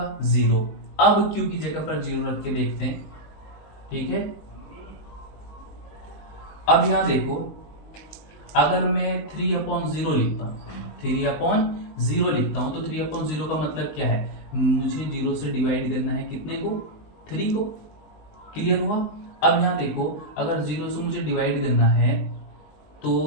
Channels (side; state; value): right; late; 19 ms